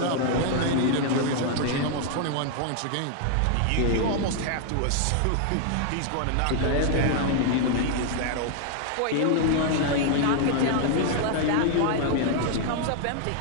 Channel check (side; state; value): both; different; correlation 0.00